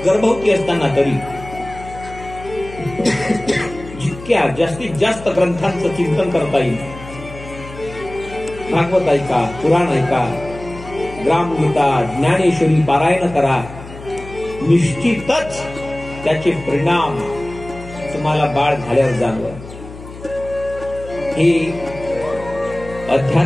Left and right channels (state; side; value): noise; left; hum, 15 dB below the sound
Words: गर्भवती असताना तरी जितक्या जास्तीत जास्त ग्रंथांचं चिंतन करता येईल, भागवत ऐका, पुराण ऐका, ग्रामगीता, ज्ञानेश्वरी पारायण करा. निश्चितच त्याचे परिणाम तुम्हाला बाळ झाल्यावर जाणवल. हे